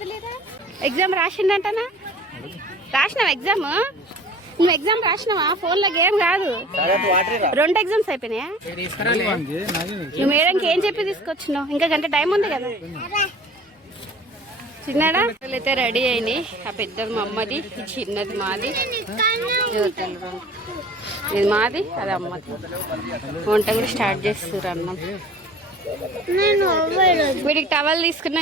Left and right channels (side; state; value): both; normal; correlation 0.45